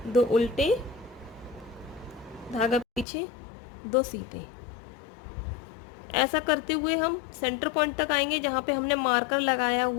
2 उल्टे, धागा पीछे, 2 सीधे। ऐसा करते हुए हम सेंटर पॉइंट तक आएंगे जहाँ पे हमने मार्कर लगाया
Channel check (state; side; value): drops out; right; at 3.1 s